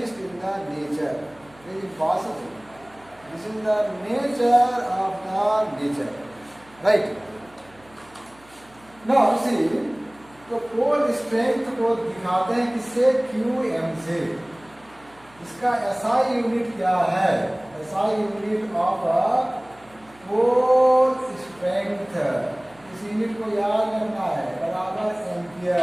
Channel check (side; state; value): right; noise; hum, 28 dB below the sound